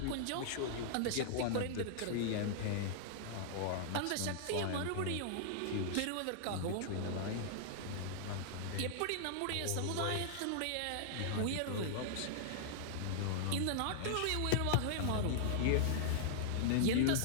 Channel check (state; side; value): different; both; correlation -0.01